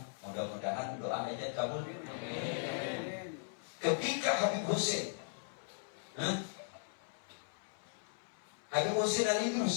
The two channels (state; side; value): silent; right; 52 dB below the other